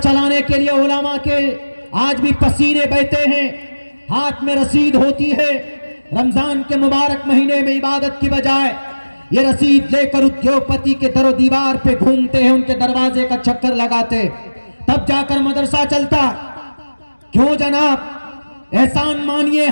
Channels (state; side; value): inverted; both; correlation -1.00